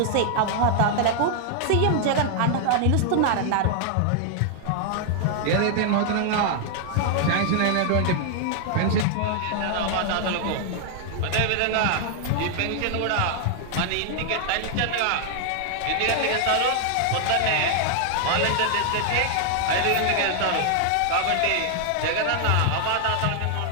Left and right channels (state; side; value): different; both; correlation 0.00